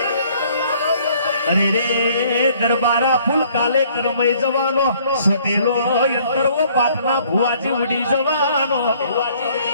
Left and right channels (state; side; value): inverted; both; correlation -0.60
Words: અરે રે દરબારા ફૂલ કાલે કરમઈ જવાનો સોટેલો યંતરવો પાટના ભુવાજી ઉડી જવાનો